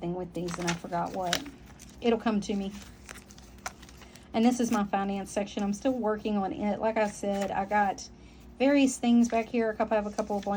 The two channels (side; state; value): both; identical; correlation 1.00